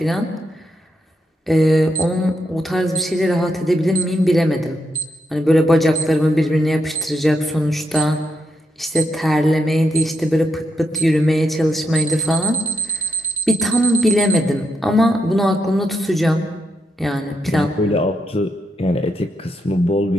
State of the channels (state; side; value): normal; both; correlation 0.81